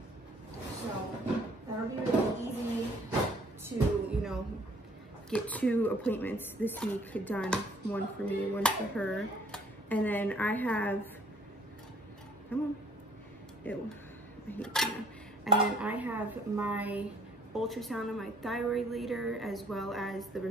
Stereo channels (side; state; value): both; normal; correlation 0.60